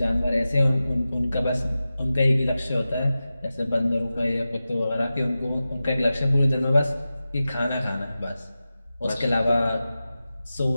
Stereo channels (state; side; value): inverted; both; correlation -0.94